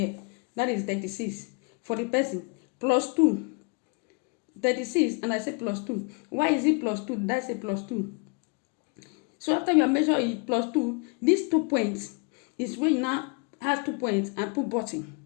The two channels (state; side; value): quieter; right; 33.1 dB